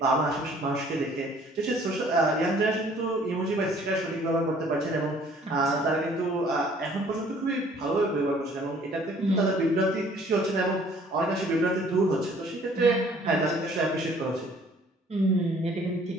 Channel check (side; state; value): both; normal; correlation 0.57